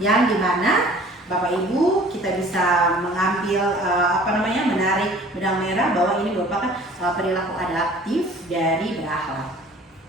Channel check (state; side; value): normal; both; correlation 0.49